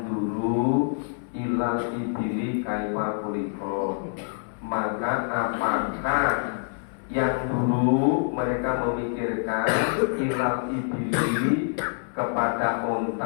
dulu ilal ibili kaifa kuliko. Maka apakah yang dulu mereka memikirkan ilal ibili kepada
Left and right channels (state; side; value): silent; right; 61 dB below the other